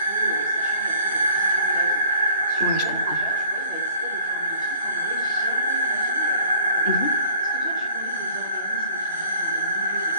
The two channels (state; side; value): inverted; both; correlation -0.51